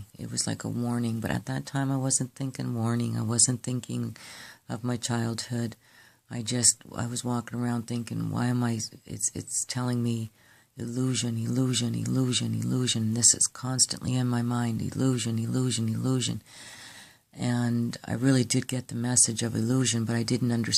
It was like a warning, but at that time I wasn't thinking warning. I wasn't thinking of my childhood. I was walking around thinking, why am I, it's telling me illusion, illusion, illusion, illusion. This is constantly in my mind, illusion, illusion, illusion. And I really did get the message of illusion, but I didn't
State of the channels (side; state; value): both; identical; correlation 1.00